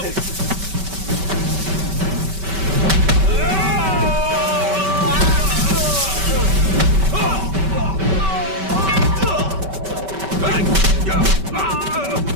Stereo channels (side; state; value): left; late; 5.2 ms